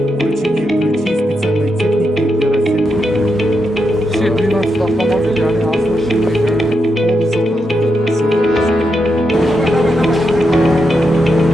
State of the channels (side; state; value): both; normal; correlation 0.84